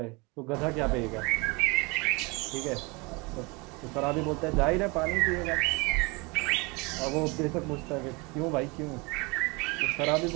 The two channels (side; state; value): left; quieter; 27.5 dB